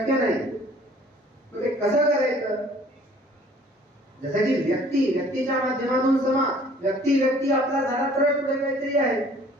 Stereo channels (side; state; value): both; normal; correlation 0.54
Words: नाही. मग ते कसं करायचं? जसं की व्यक्तीच्या माध्यमातून समाज, व्यक्ती आपला झाला तर पुढे काहीतरी आहे.